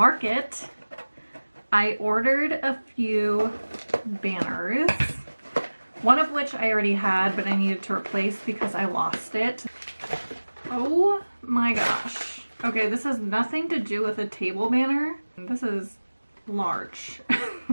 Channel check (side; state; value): both; inverted; correlation -1.00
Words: I ordered a few banners, one of which I already had but I needed to replace because I lost it. Oh my gosh. Okay, this has nothing to do with a table banner. This is large.